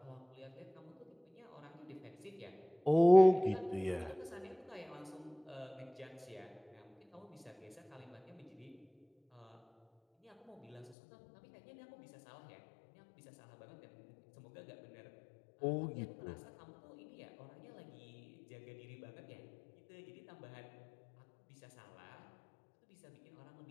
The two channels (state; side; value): drops out; right; at 11.0 s